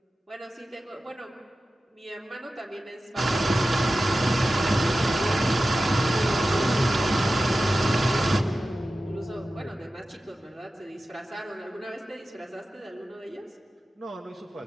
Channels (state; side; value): normal; both; correlation 0.94